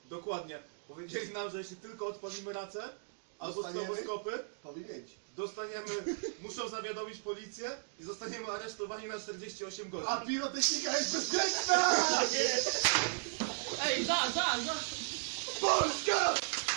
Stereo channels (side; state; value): left; silent; digital silence